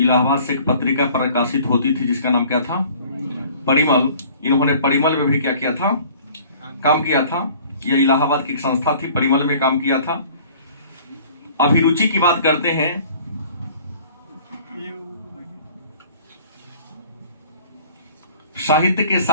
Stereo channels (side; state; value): both; inverted; correlation -0.50